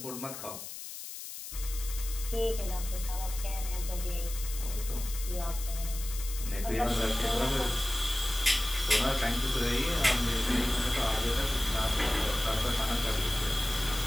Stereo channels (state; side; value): noise; left; hiss, 10 dB below the sound